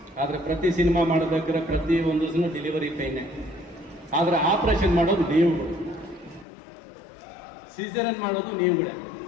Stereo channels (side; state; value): right; drops out; at 6.5 s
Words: ಆದರೆ ಪ್ರತಿ ಸಿನಿಮಾ ಮಾಡಬೇಕಾದ್ರೆ ಪ್ರತಿ ಒಂದು ದಿನ ಡೆಲಿವರಿ ಪೈನೇ. ಆದರೆ ಆಪ್ರೇಷನ್ ಮಾಡೋದು ನೀವುಗಳು, ಸಿಸೇರಿಯನ್ ಮಾಡೋದು ನೀವುಗಳೇ.